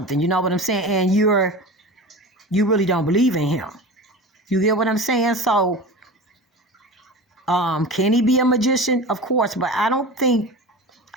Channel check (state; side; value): normal; both; correlation 0.32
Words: You know what I'm saying? And you really don't believe in him. You get what I'm saying? So, can he be a magician? Of course, but I